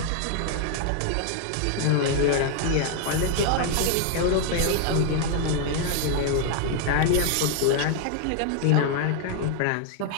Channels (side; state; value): both; different; correlation 0.00